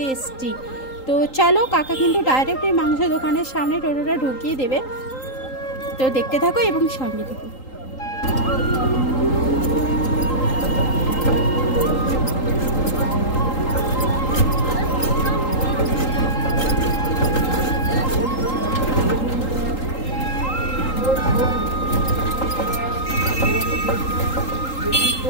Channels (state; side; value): late; right; 3.8 ms